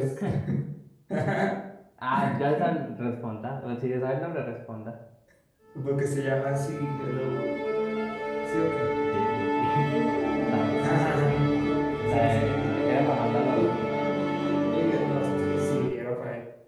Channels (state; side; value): identical; both; correlation 1.00